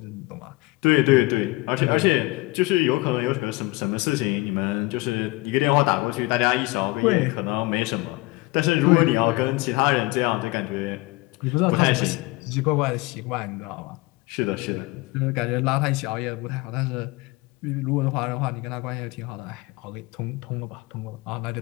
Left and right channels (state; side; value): quieter; right; 22.5 dB